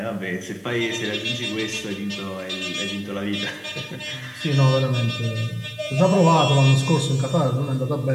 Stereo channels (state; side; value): identical; both; correlation 1.00